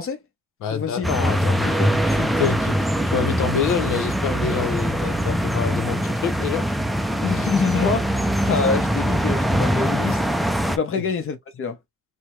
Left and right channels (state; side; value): normal; both; correlation 0.68